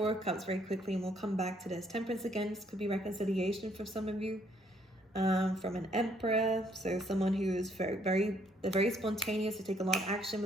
of Cups very quickly and we'll come back to this. Temperance again, this could be reconciliation for some of you. From an Emperor, so someone who is very spontaneous, to take a lot of action.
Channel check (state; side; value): normal; both; correlation 0.67